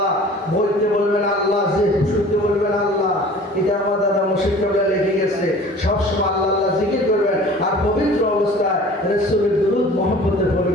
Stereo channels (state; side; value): normal; both; correlation 0.45